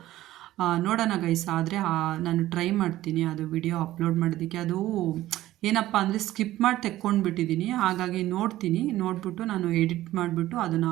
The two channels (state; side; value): quieter; left; 15.1 dB